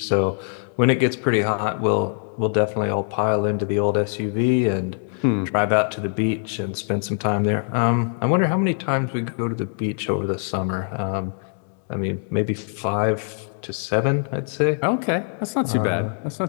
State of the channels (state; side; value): silent; right; 56 dB below the other